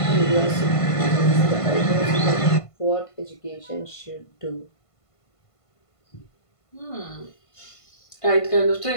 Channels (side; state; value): right; late; 1.5 ms